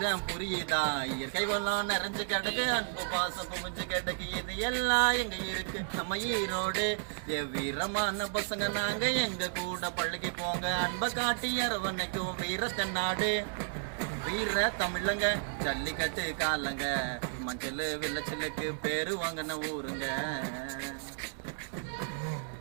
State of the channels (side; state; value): left; silent; digital silence